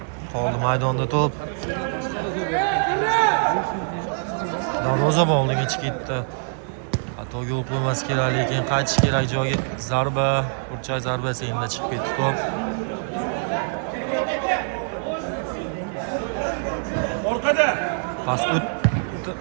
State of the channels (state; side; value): silent; left; 63 dB below the other